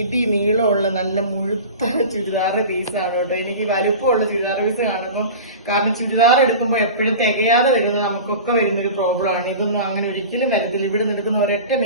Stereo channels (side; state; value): both; inverted; correlation -0.34